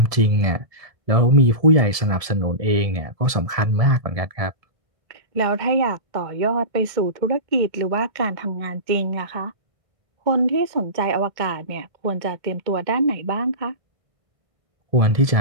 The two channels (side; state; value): left; late; 1.7 ms